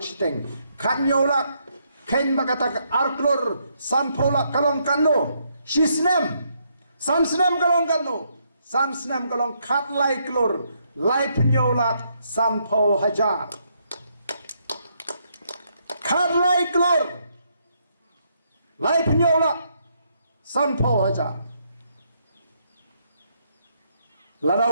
siteng kan nyolak ken makata arklor sampolak kalong kano sisnem sansnem kalong kano sansnem kalong kat lai klor lai penyolak sampo hajar kat lai klor lai penyolak sampo hajar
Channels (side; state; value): both; inverted; correlation -0.75